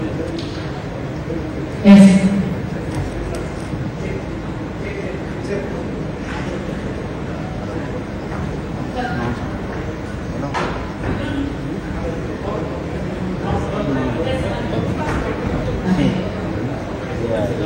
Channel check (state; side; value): identical; both; correlation 1.00